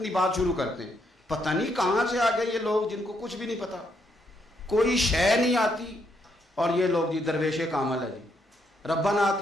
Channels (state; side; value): normal; both; correlation 0.76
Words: بات شروع کرتے ہیں۔ پتہ نہیں کہاں سے آ گئے یہ لوگ جن کو کچھ بھی نہیں پتا، کوئی شے نہیں آتی، اور یہ لوگ جی درویش کامل ہے جی، ربنا